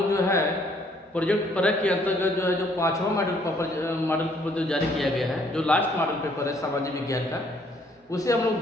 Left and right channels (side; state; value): both; normal; correlation 0.65